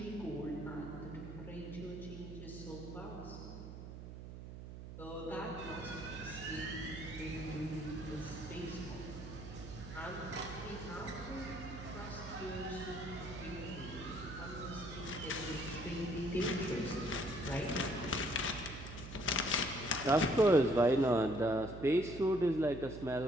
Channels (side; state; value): right; noise; hum, 11 dB below the sound